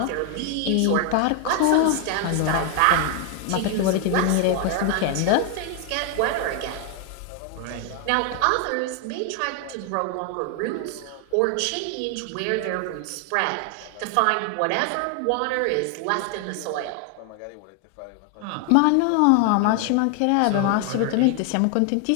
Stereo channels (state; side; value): different; both; correlation 0.00